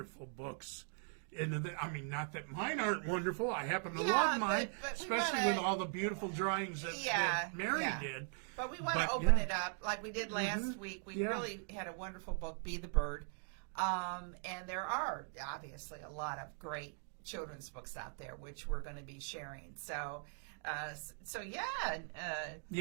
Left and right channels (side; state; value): left; silent; 51 dB below the other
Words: books into the. I mean, not that mine aren't wonderful. I happen to Yeah, love mine, but we especially wanna- with all the beautiful drawings that Mary yeah. did. But we want to But, open yeah. it up like we did last week. We Yeah. really had a wonderful book, Be the Bird. And there are obviously a lot of great children's books out there, which we're going to be sharing. So,